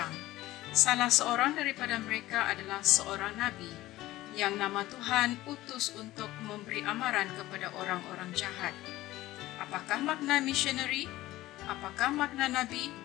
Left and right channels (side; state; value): right; quieter; 16.7 dB